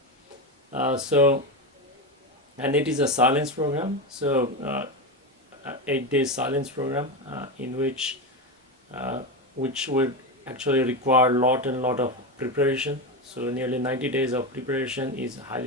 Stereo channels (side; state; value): both; normal; correlation 0.15